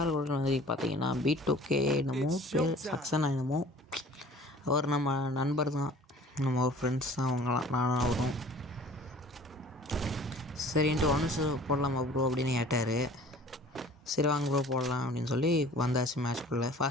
கூட வந்து பார்த்தீங்கன்னா B2K என்னமோ பேர், சக்சனா என்னமோ, அவர் நம்ம நண்பர் தான், நம்ம ஒரு ஃப்ரெண்ட்ஸ் தான் அவங்களாம், நானும் அவரும். சரின்ட்டு ஒன்று போடலாமா ப்ரோ அப்படின்னு கேட்டார். சரி வாங்க ப்ரோ போடலாம் அப்படின்னு சொல்லி வந்தாச்சு மேட்ச்குள்ளே.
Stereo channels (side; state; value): both; normal; correlation 0.48